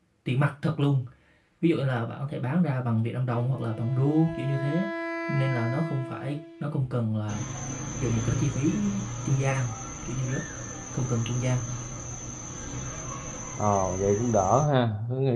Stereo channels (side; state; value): both; identical; correlation 1.00